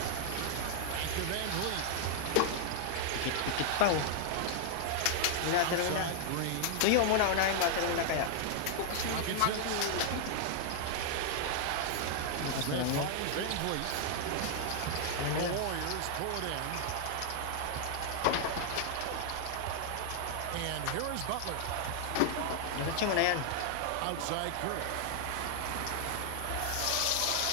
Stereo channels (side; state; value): both; different; correlation 0.00